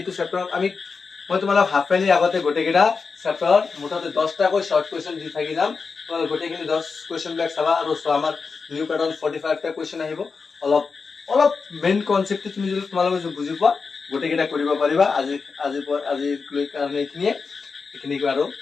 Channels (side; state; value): right; quieter; 4.9 dB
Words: চ্যাপ্টাৰ আমি মই তোমালোক হাফ ফাইলি আগতে গোটেইকেইটা চ্যাপ্টাৰ মুঠতে 10টা কৈ শৰ্ট কোৱেশ্চন দি থাকি যাম তোমালোক গোটেইখিনি 10 কোৱেশ্চন ব্যাক চাবা আৰু সো আমাৰ নিউ প্যাটাৰ্ন 45 টা কোৱেশ্চন আহিব অলপ মেইন কনসেপ্ট তুমি যদি তোমালোক বুজি পোৱা গোটেইকেইটা কৰিব পাৰিবা আজি কাৰণে এইখিনি আৰু